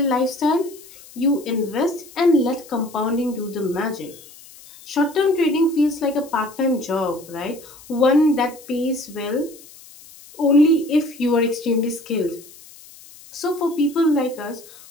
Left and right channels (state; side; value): noise; left; hiss, 21 dB below the sound